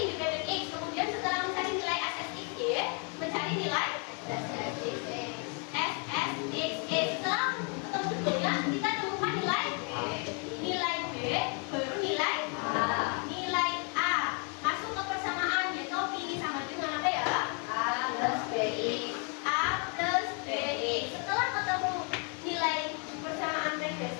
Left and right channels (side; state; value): right; quieter; 37.9 dB